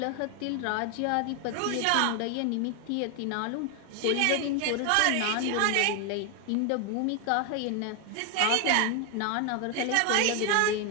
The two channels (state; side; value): different; both; correlation 0.01